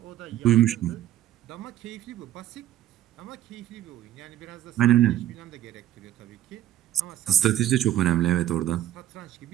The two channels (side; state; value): left; quieter; 12.7 dB